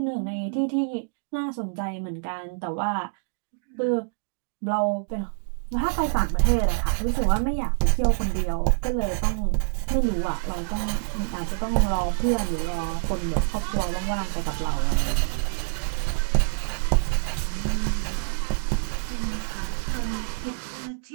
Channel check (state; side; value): silent; left; digital silence